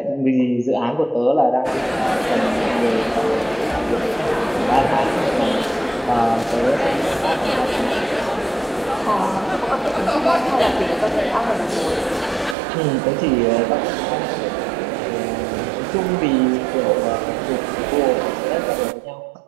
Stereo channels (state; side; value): drops out; left; at 12.6 s